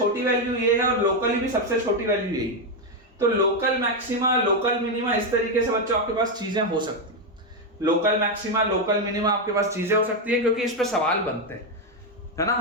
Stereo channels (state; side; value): normal; both; correlation 0.05